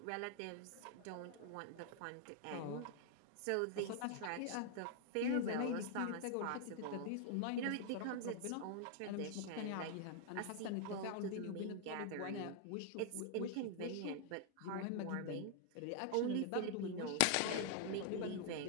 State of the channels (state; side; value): different; both; correlation 0.00